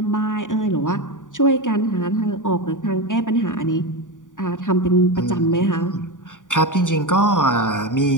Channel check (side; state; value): right; late; 0.87 ms